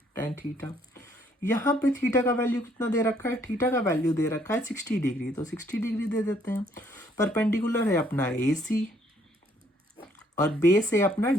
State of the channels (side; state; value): both; normal; correlation 0.66